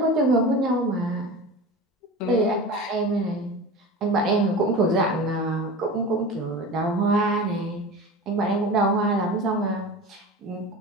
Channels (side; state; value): both; normal; correlation 0.32